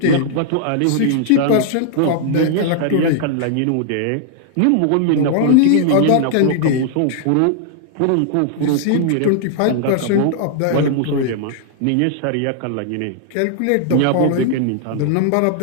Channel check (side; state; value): both; different; correlation -0.01